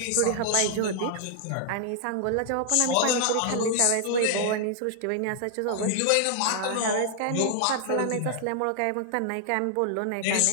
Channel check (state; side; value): different; both; correlation 0.00